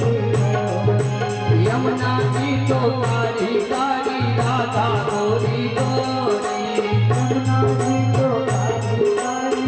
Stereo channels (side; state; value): both; identical; correlation 1.00